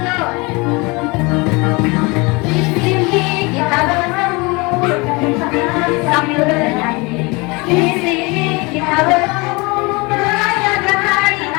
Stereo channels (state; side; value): quieter; right; 26.5 dB